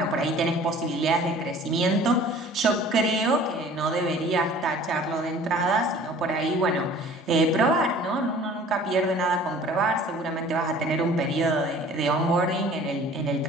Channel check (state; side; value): normal; both; correlation 0.48